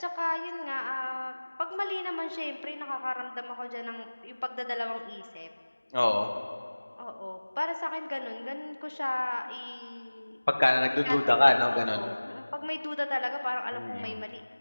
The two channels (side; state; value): both; inverted; correlation -1.00